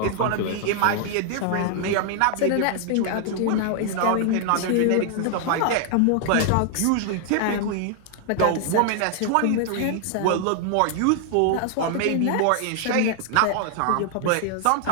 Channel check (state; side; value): different; both; correlation 0.00